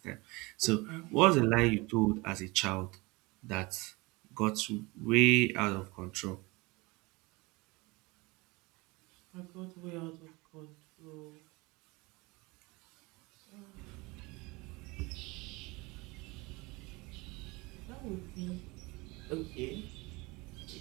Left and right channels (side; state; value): left; quieter; 24.5 dB